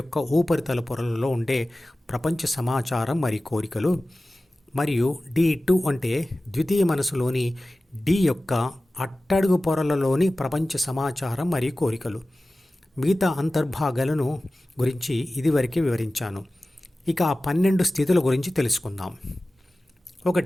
ఉపరితల పొరలలో ఉండే ప్రపంచ సమాచారం మరియు కోరికలు, మరియు D2 అంటే ద్వితీయ మనసులోని D యొక్క అట్టడుగు పొరలలోని ప్రపంచ సమాచారం మరియు కోరికలు. మిగతా అంతర్భాగాలను గురించి ఇదివరకే వివరించాను. ఇక ఆ 12 స్థితుల గురించి తెలుసుకుందాం.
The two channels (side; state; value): both; normal; correlation 0.96